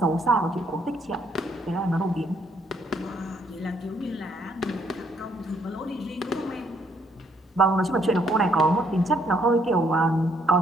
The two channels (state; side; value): normal; both; correlation 0.69